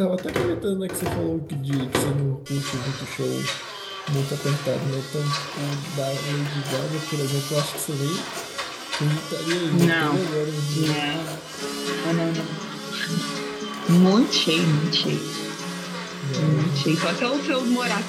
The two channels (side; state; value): both; identical; correlation 1.00